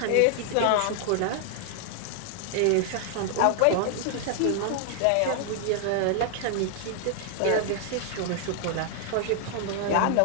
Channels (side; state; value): both; different; correlation 0.00